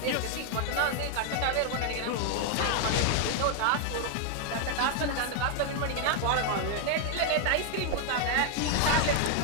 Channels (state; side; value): different; both; correlation 0.00